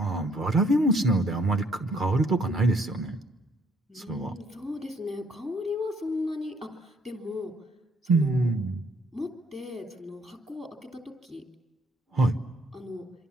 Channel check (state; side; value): normal; both; correlation 0.66